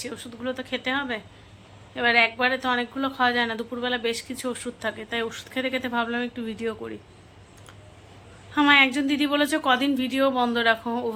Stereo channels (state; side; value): identical; both; correlation 1.00